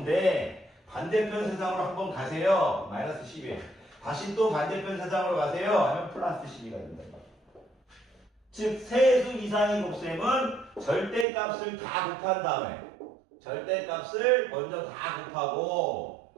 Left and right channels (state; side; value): drops out; left; at 11.2 s